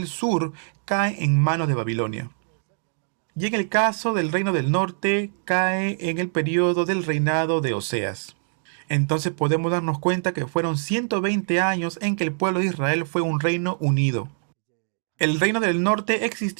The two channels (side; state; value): left; silent; digital silence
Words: sur cae en manos de Babilonia. Y en el caso del reino del norte cae en el periodo del reinado de Oseas. Entonces podemos darnos cuenta que fueron 120 años en que el pueblo de Israel fue un reino unido. El reino del norte